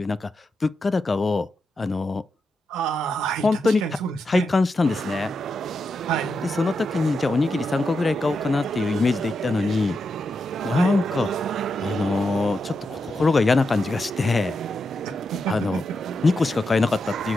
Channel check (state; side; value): normal; both; correlation 0.86